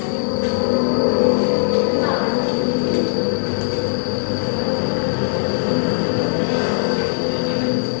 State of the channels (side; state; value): right; silent; 66 dB below the other